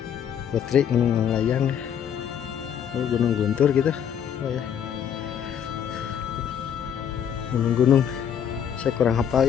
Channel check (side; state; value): right; quieter; 8.7 dB